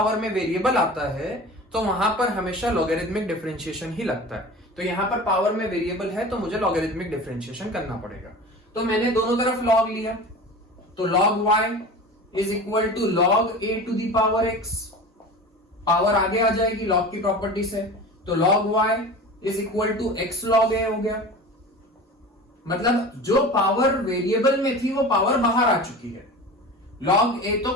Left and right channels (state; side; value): normal; both; correlation 0.35